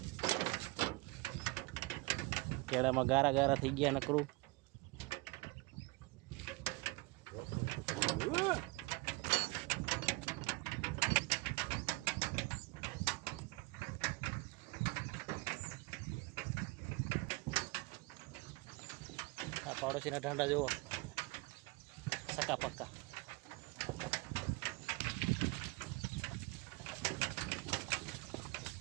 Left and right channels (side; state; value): left; quieter; 24.7 dB